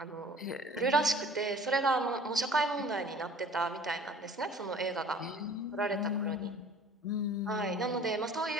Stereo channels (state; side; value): normal; both; correlation 0.48